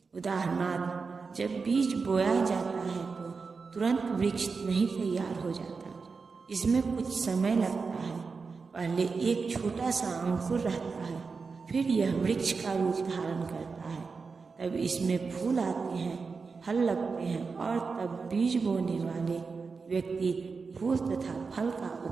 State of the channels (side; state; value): left; quieter; 4.8 dB